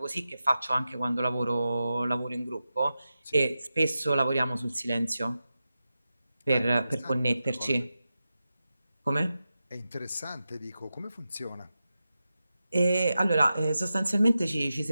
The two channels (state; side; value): inverted; both; correlation -0.92